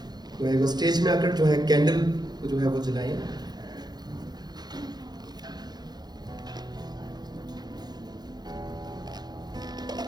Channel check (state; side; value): late; left; 0.20 ms